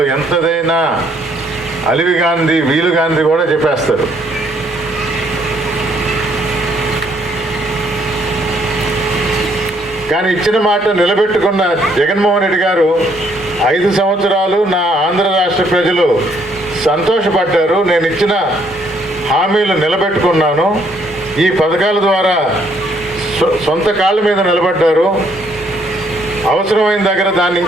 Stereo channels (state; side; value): normal; both; correlation 0.68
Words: ఎంతదైనా అలివి గాంధీ వీలు గాంధీ కూడా చెప్పేస్తారు. కానీ ఇచ్చిన మాట నిలబెట్టుకున్న జగన్మోహన్ రెడ్డి గారు 5 సంవత్సరాలు నా ఆంధ్ర రాష్ట్ర ప్రజలు సంతోషపడ్డారు. నేను ఇచ్చిన హామీలు నిలబెట్టుకున్నాను. ఈ పథకాల ద్వారా సొంత కాళ్ళ మీద నిలబడ్డారు. అవసరమైన దగ్గర దాన్ని